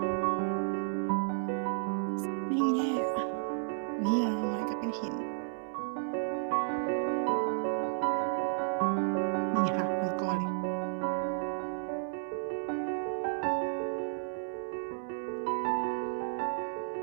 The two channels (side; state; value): left; silent; 56 dB below the other